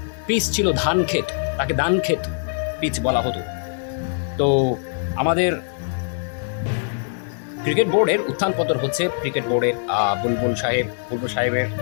পিচ ছিল ধান ক্ষেত, তাকে ধান ক্ষেত পিচ বলা হতো। তো আমাদের ক্রিকেট বোর্ডের উত্থান পতন হচ্ছে। ক্রিকেট বোর্ডের বুলবুল সাহেবের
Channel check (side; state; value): right; silent; digital silence